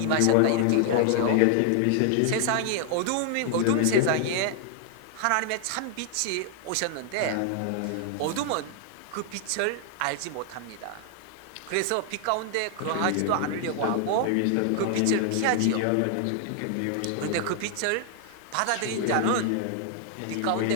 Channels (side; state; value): both; different; correlation 0.00